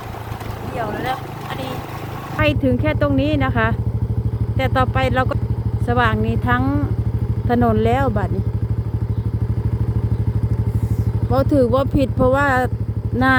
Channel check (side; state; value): both; identical; correlation 1.00